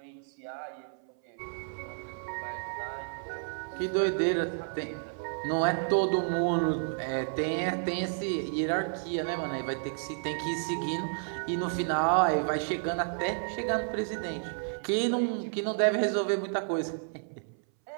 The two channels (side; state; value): left; silent; 57 dB below the other